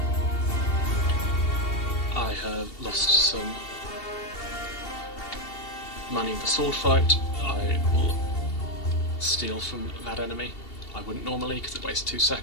I have lost some money in the sword fight, I will steal from that enemy. I wouldn't normally because it wastes 2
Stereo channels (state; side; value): late; right; 2.7 ms